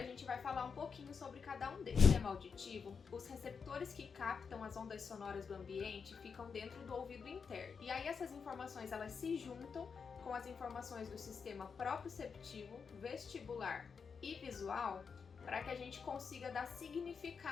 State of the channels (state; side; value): quieter; right; 5.8 dB